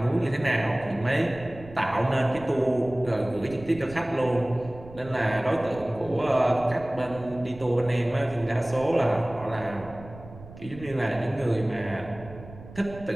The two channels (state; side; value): noise; right; rumble, 17 dB below the sound